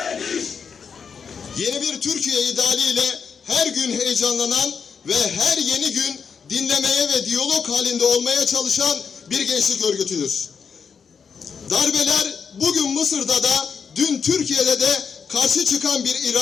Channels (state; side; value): quieter; right; 6.3 dB